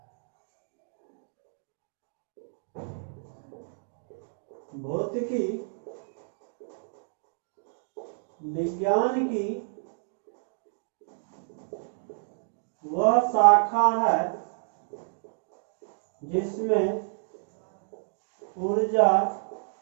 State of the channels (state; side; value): silent; left; digital silence